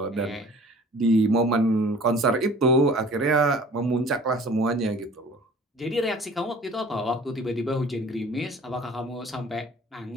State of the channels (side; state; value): both; normal; correlation 0.48